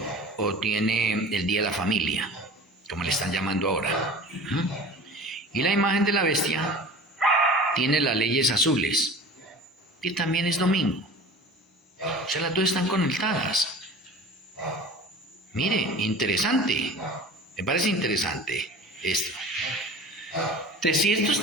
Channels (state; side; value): normal; both; correlation 0.39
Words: o tiene el día de la familia, como le están llamando ahora. Y la imagen de la bestia tiene las leyes azules, que también es domingo. O sea, las dos están conectadas. Mire, interesante. Me parece interesante esto. Entonces, si esto